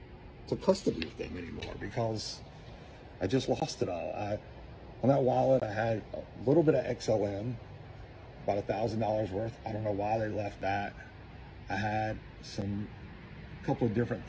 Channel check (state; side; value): identical; both; correlation 1.00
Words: to custody with them anymore because I just lost it all. On that wallet, I had a little bit of XLM, about $1,000 worth. I don't know why they left that. I had a couple of different